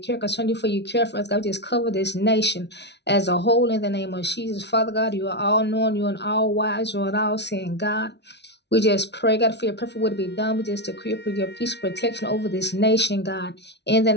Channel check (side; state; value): right; late; 0.50 ms